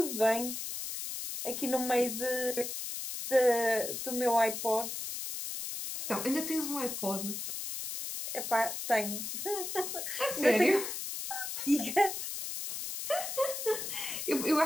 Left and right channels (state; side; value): noise; left; hiss, 5 dB below the sound